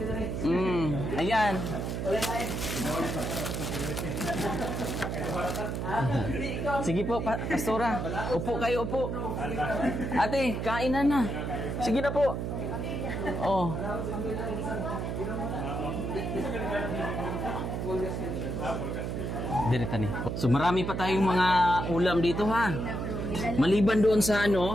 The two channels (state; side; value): noise; right; hum, 3 dB below the sound